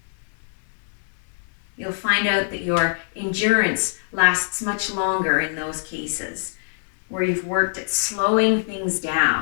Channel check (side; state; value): right; silent; 60 dB below the other